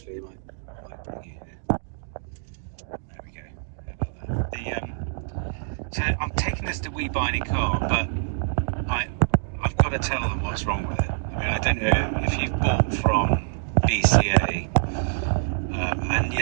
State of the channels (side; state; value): left; silent; digital silence